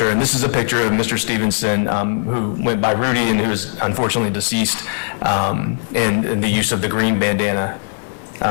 and this is a picture of Mr. Stevenson, who went by Rudy and who is unfortunately deceased, and the use of the green bandana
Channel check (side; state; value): right; silent; digital silence